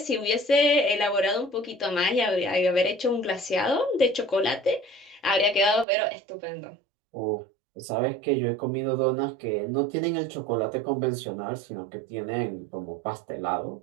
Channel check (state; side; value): drops out; left; at 5.9 s